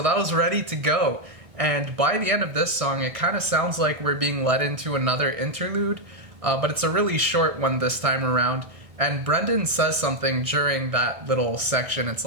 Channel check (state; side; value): late; left; 1.6 ms